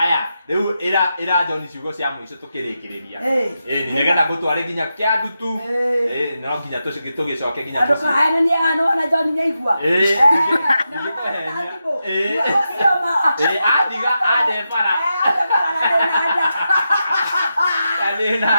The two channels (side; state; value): both; inverted; correlation -0.88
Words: rĩu ira John ciugo cia mũico tukirikiriria. Ni nigetha gutware nginya kia ndutu. No nginya tugicoke nginya tuci. Aduka hena ni ano na John nyaigua. Adiga ade para. Ade